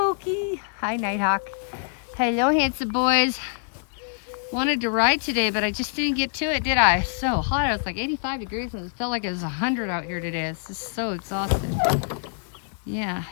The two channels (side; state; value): right; silent; 61 dB below the other